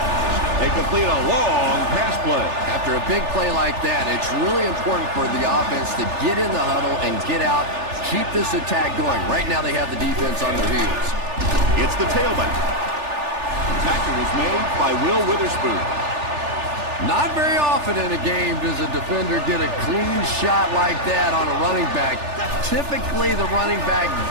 They complete a long pass play. After a big play like that, it's really important for the offense to get in the huddle and get out, keep this attack going. Right now they have the defense on their heels. It's the tailback. Tackle was made by Will Witherspoon. Not very often in a game does a defender get a clean shot like that on a running back. Typically, the running back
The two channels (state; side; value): late; left; 3.4 ms